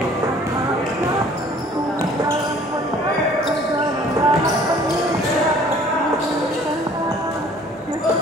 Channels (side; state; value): both; normal; correlation 0.53